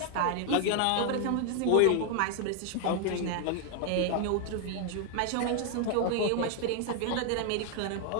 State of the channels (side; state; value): both; different; correlation 0.00